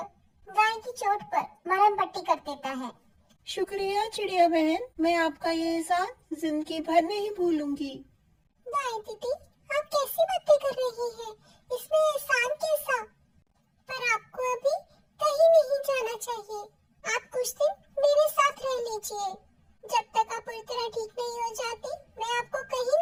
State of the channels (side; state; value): both; identical; correlation 1.00